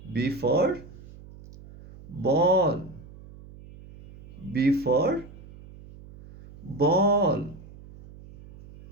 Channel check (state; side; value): noise; right; hum, 19 dB below the sound